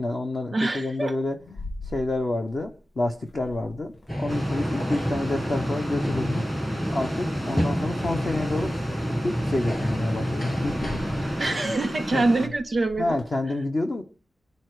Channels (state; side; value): normal; both; correlation 0.94